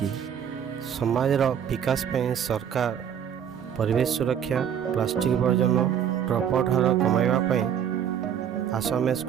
ସମାଜର ବିକାଶ ପାଇଁ ସରକାର ପରିବେଶ ସୁରକ୍ଷା, ପ୍ଲାଷ୍ଟିକ ବର୍ଜନ, ଡ୍ରପଆଉଟ ହାର କମାଇବା ପାଇଁ ଆସ ଆମେ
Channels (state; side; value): quieter; left; 8.7 dB